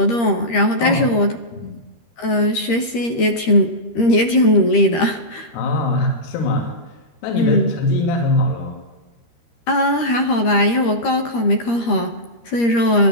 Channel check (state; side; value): late; right; 13 ms